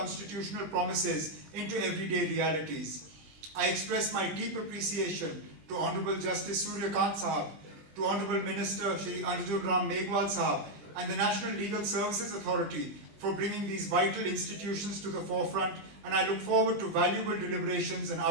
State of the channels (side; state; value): left; late; 20 ms